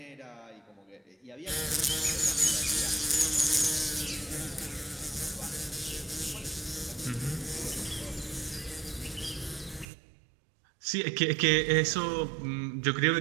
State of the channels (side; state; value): left; drops out; at 9.9 s